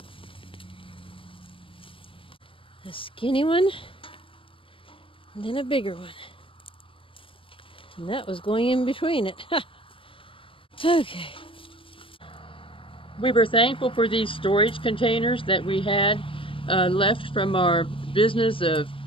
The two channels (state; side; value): late; right; 0.25 ms